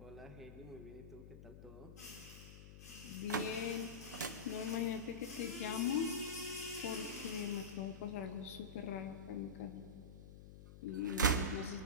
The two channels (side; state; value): left; noise; hum, 14 dB below the sound